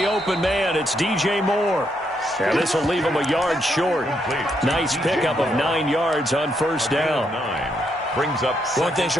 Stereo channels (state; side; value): normal; both; correlation 0.77